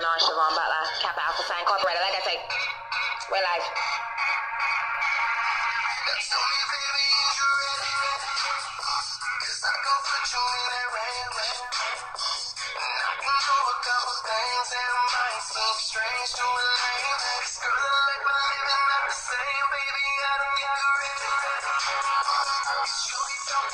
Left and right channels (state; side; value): identical; both; correlation 1.00